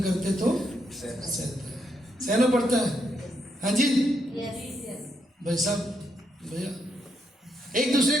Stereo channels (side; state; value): both; normal; correlation 0.79